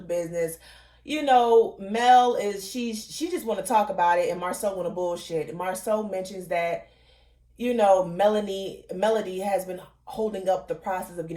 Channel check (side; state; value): both; identical; correlation 1.00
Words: business. Mel she just want to talk about it, and Marcel want to bullshit. Marcel mentions that, Melody has been holding up the process of